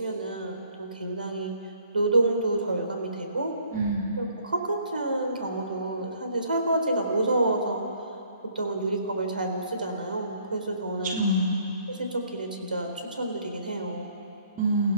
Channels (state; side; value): inverted; both; correlation -0.62